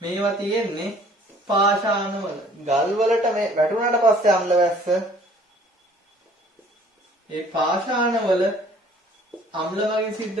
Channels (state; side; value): normal; both; correlation 0.55